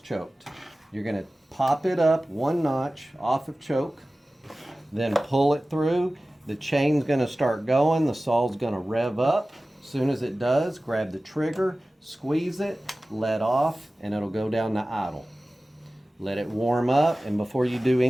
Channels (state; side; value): normal; both; correlation 0.96